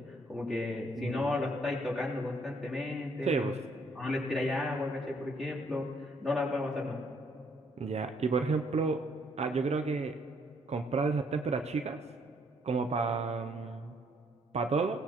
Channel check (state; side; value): normal; both; correlation 0.68